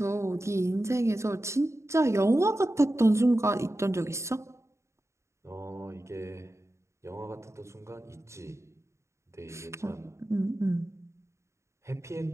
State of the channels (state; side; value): late; left; 0.14 ms